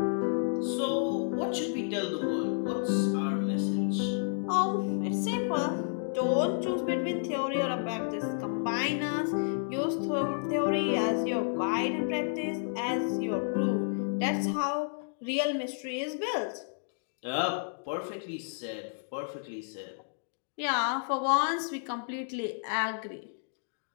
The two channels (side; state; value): right; silent; digital silence